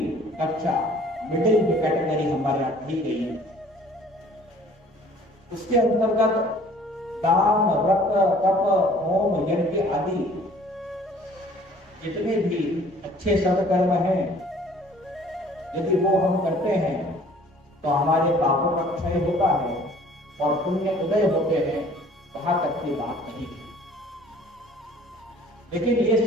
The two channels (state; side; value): normal; both; correlation 0.53